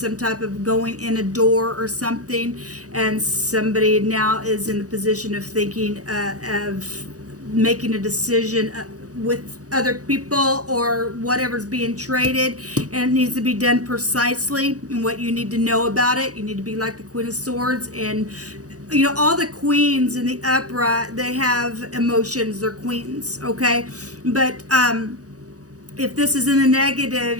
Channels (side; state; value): left; late; 0.67 ms